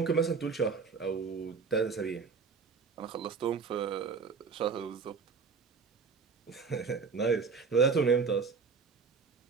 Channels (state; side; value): quieter; left; 5.3 dB